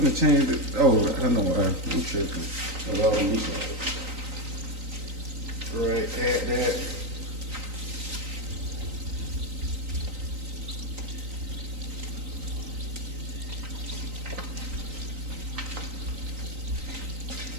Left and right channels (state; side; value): late; left; 3.9 ms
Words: change it. Oh, I know why. I'm tripping. I love meatballs. Right, add that.